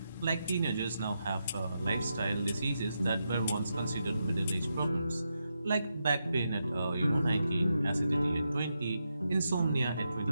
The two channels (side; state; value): both; inverted; correlation -0.85